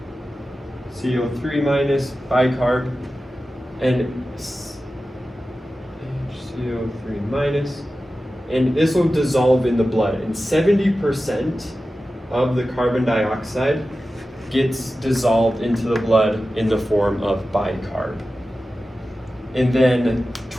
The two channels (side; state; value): both; normal; correlation 0.94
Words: HCO3 minus bicarb and HCO3 minus, and this will dissolve in the blood, and 70% of the carbon dioxide gets dissolved into the blood in the form of bicarb. And then